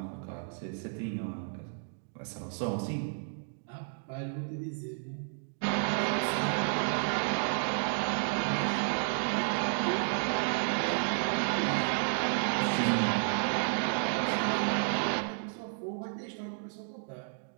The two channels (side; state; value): left; silent; digital silence